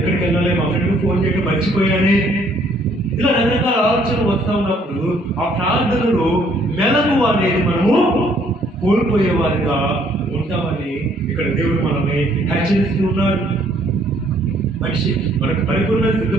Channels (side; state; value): both; normal; correlation 0.64